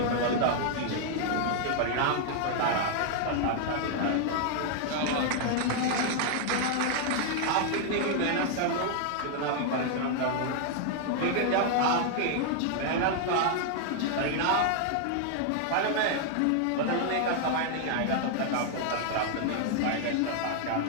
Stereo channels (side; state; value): both; different; correlation 0.00